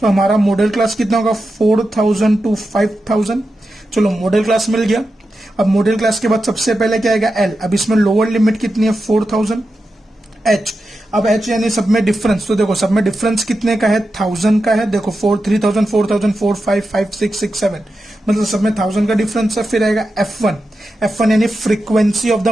हमारा मॉडल क्लास कितना होगा, 4000 to 5000। चलो मॉडल क्लास मिल गया। अब मॉडल क्लास के बाद सबसे पहले क्या आएगा, एल। अब इसमें लोअर लिमिट कितनी है, 4000। एच, अब एच यानी सब में डिफरेंस। तो देखो सब में डिफरेंस कितने का है, 1000 का है। देखो 3000, 4000, 4, 5, 5, 6, 6, 7, मतलब सब में 1000 का डिफरेंस है। फिर आएगा F1। F1 यानी frequency of the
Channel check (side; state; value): both; normal; correlation 0.90